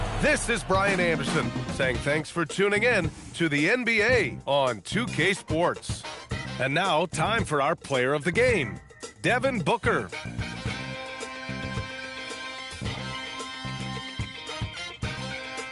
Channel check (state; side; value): identical; both; correlation 1.00